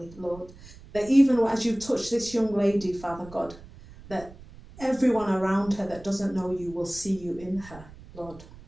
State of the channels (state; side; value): noise; right; rumble, 19 dB below the sound